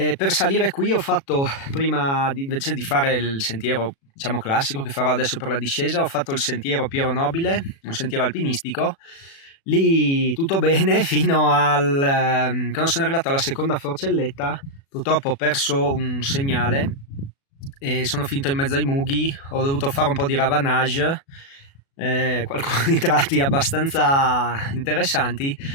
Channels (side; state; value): right; late; 36 ms